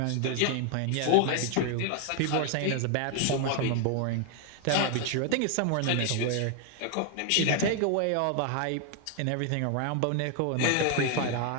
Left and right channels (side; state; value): both; different; correlation 0.01